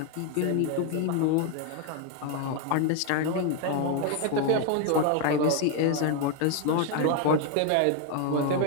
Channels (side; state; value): both; different; correlation 0.01